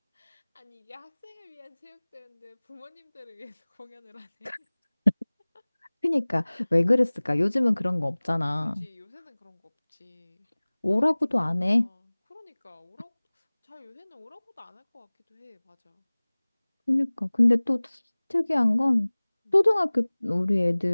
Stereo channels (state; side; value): inverted; both; correlation -1.00